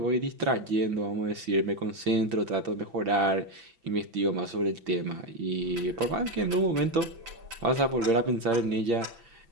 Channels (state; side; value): late; left; 6.0 ms